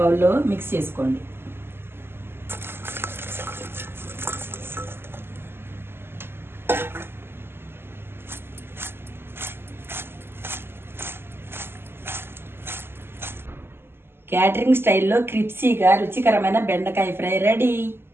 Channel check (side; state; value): left; late; 0.11 ms